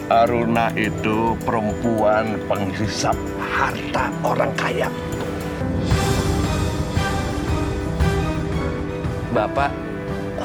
Aruna itu perempuan penghisap harta orang kaya. Bapak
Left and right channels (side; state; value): both; identical; correlation 1.00